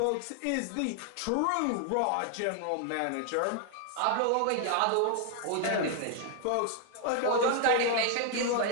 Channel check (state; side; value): different; both; correlation 0.00